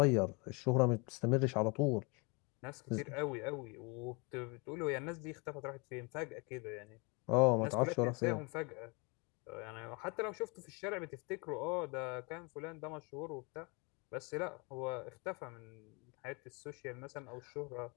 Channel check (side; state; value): right; quieter; 30.3 dB